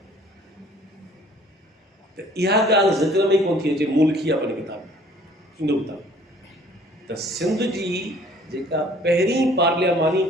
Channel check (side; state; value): both; normal; correlation 0.55